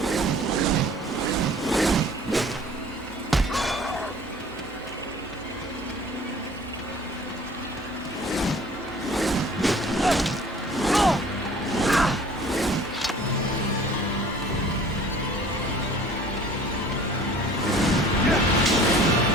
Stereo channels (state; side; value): normal; both; correlation 0.49